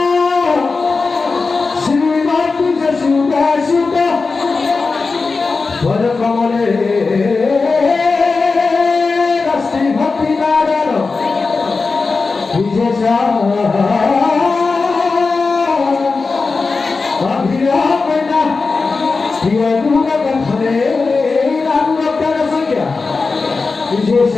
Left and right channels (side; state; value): right; quieter; 4.2 dB